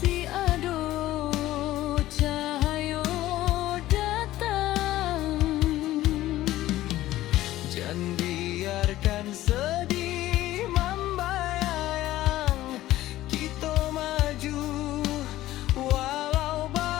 ada cahaya datang. Jangan biarkan sedih membayang, kita maju walau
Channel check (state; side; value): quieter; right; 15.3 dB